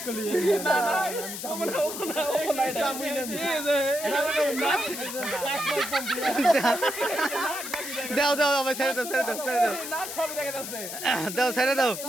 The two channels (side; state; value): left; noise; hiss, 8 dB below the sound